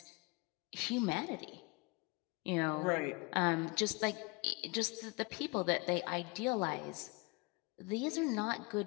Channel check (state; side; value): quieter; right; 27.7 dB